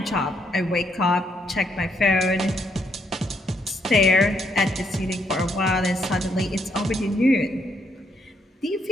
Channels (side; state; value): both; normal; correlation 0.73